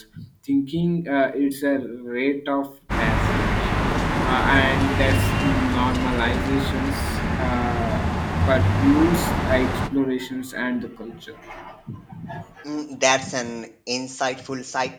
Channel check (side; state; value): both; identical; correlation 1.00